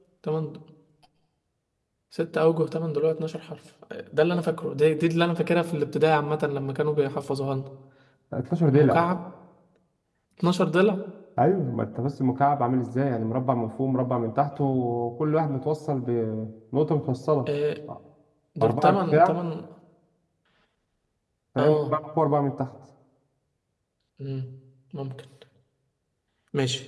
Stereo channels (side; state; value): both; identical; correlation 1.00